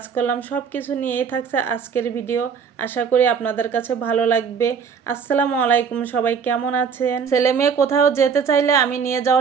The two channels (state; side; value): quieter; left; 6.4 dB